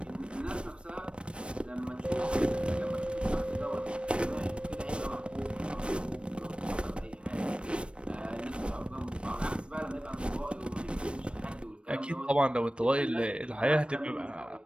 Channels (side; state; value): left; late; 0.058 ms